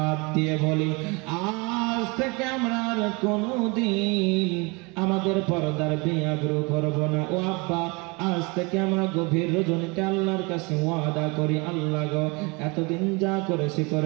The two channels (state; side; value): quieter; left; 28.2 dB